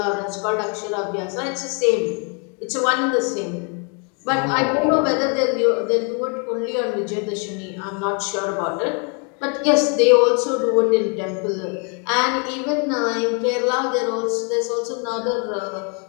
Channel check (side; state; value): right; quieter; 36.8 dB